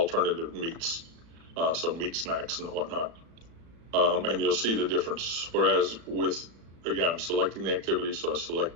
meats, so meat snacks and whatnot. And you'll see the difference. Whereas with, again, I'm selecting the activity, so I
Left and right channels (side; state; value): left; late; 36 ms